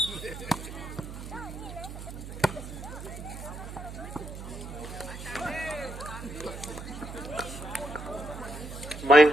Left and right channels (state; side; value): noise; right; hum, 10 dB below the sound